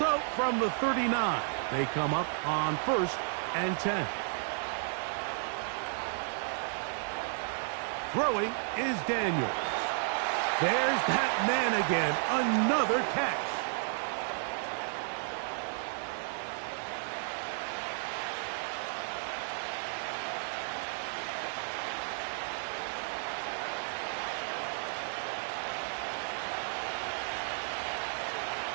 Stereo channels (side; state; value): left; silent; 56 dB below the other